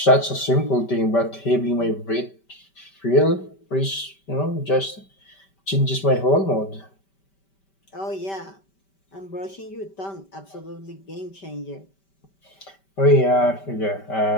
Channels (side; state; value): right; late; 5.2 ms